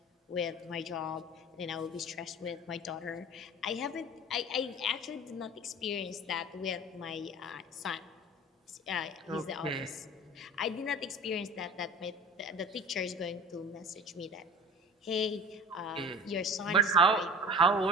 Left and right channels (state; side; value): normal; both; correlation 0.39